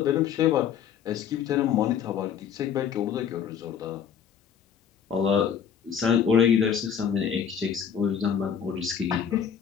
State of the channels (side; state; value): right; quieter; 8.0 dB